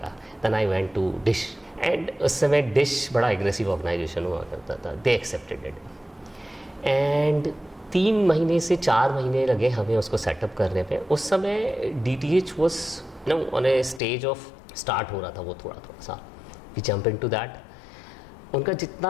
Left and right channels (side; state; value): right; drops out; at 14.0 s